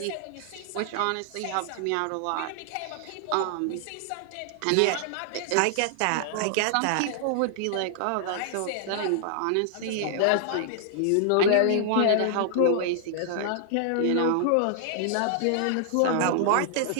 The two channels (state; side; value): different; both; correlation -0.01